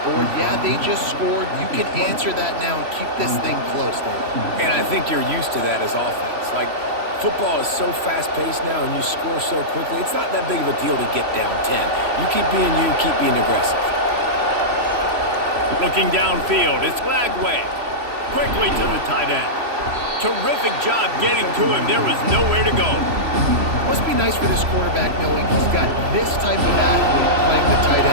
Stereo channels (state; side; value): late; left; 3.0 ms